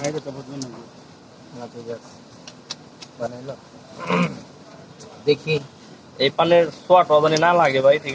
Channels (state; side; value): identical; both; correlation 1.00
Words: তো বুঝবেন না ঠিক আছে বানাইলো দেখি এই পানের সোয়াটা জানি না লাগে ভাই।